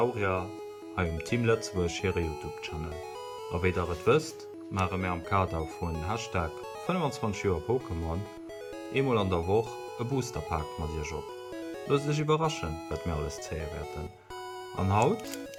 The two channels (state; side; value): identical; both; correlation 1.00